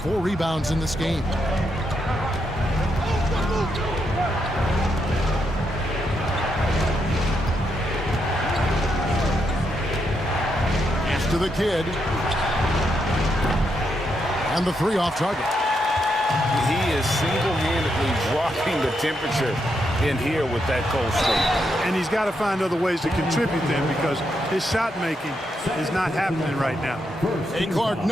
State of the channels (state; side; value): normal; both; correlation 0.81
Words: 4 rebounds in this game. Pass to the kid. And the 3 off target. He is single-handedly dropping the temperature in here with that cold streak. And he's got to find other ways to contribute then, because his shot making is not happening right now. Hey, Clark,